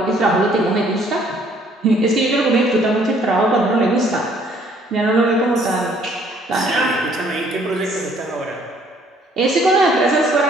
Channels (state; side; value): normal; both; correlation 0.61